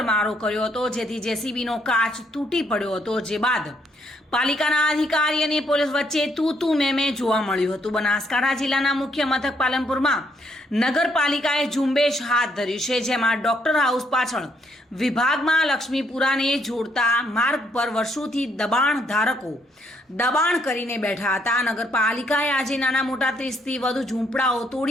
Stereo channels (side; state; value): both; normal; correlation 0.72